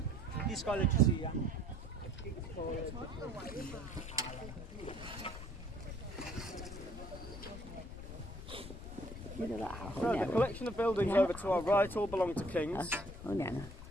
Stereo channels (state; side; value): noise; left; rumble, 11 dB below the sound